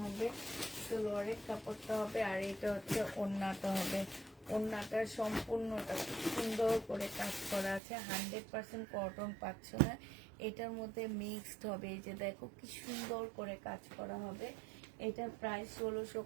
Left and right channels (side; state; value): left; drops out; at 7.8 s